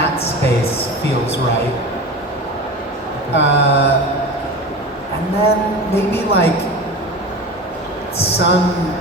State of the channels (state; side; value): normal; both; correlation 0.30